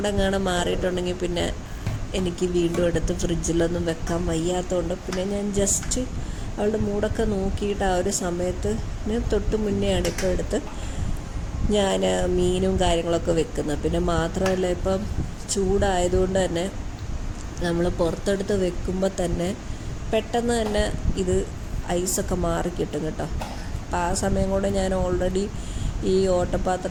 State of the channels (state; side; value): identical; both; correlation 1.00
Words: മാറിയിട്ടുണ്ടെങ്കിൽ പിന്നെ എനിക്ക് വീണ്ടും എടുത്ത് ഫ്രിഡ്ജിലൊന്നും വെക്കാൻ വയ്യാത്തതുകൊണ്ട് പിന്നെ ഞാൻ ജസ്റ്റ് അവളുടെ മൂടൊക്കെ നോക്കിയിട്ട് ആ ഒരു സമയത്ത് തൊട്ട് മുന്നെയാണ് ഇപ്പോൾ എടുത്ത് ഞാൻ മീനും കാര്യങ്ങളൊക്കെ വെക്കുന്നത്. പിന്നെ മാത്രമല്ല ഇപ്പം ചൂടായതുകൊണ്ട് തന്നെ നമ്മൾ പുറത്തെടുത്ത് വെക്കുമ്പോൾ തന്നെ പെട്ടെന്ന് തന്നെ ഇത് ഐസൊക്കെ മാറിക്കിട്ടും കേട്ടോ. അപ്പം ആ സമയം കൊണ്ട് ഞാൻ ഓൾറെഡി ഈ